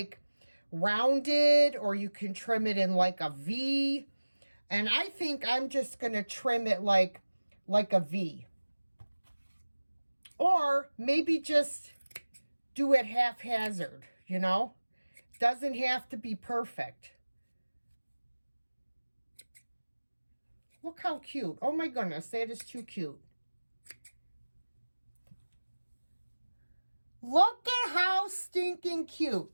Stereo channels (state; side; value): inverted; both; correlation -1.00